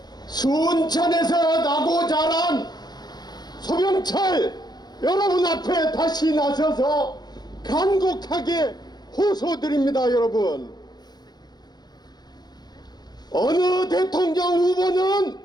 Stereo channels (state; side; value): late; right; 0.20 ms